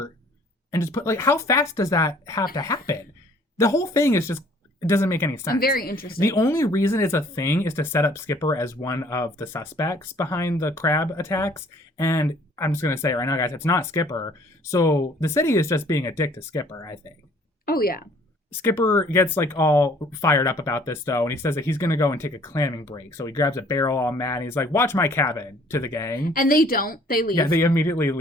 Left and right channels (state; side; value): normal; both; correlation 0.57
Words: and just put... Like, how fast does that have to happen? The whole thing is just... It doesn't make any sense. I'm very interested. The only reason it's a thing is to set up Skipper as one of the suspects behind the crab attacks. And I'm just going to say right now, guys, it's not Skipper. So the city is just being a dick to Skipper, I think. Oh, yeah. Skipper gets like all fired up about this though, and he says that he's gonna go and take a clamming break. So he grabs a barrel all mad and he's like, watch my cabin, to the gang. And they don't. They leave. Yeah, they immediately